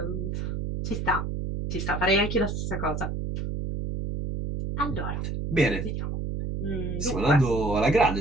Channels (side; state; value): right; noise; hum, 3 dB below the sound